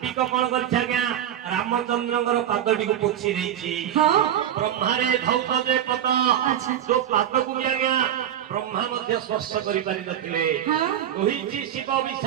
କଣ କରିଛି ଆଜ୍ଞା, ରାମଚନ୍ଦ୍ରଙ୍କର ପାଦଟିକୁ ପୋଛି ଦେଇଛି। ବ୍ରହ୍ମାରେ ଧୌତ ଯେ ପଦ, ଯୋଉ ପାଦକୁ ବି ଆଜ୍ଞା ବ୍ରହ୍ମା ମଧ୍ୟ ସ୍ପର୍ଶ କରିପାରିନଥିଲେ। କହିଛି ଶିବ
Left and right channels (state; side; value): quieter; left; 10.5 dB